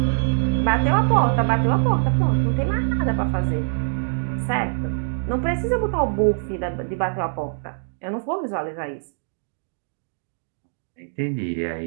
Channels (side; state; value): left; silent; digital silence